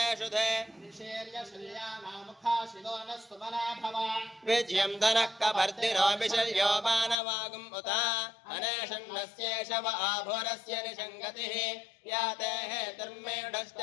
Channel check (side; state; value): right; drops out; at 7.2 s